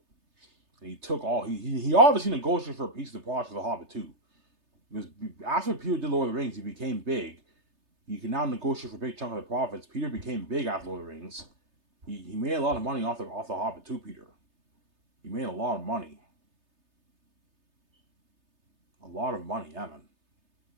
And he took all he obviously negotiated for a piece of the project for The Hobbit too. Because after Peter did Lord of the Rings, he became big. He can now negotiate for a big chunk of the profits. Peter became big after Lord of the Rings. He made a lot of money off the Hobbit too, Peter. He made a lot of money. A lot of money, yeah, man.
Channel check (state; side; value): late; left; 3.3 ms